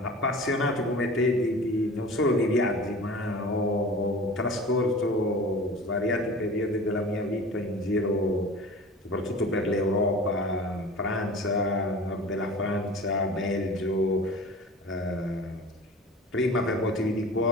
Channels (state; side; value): normal; both; correlation 0.39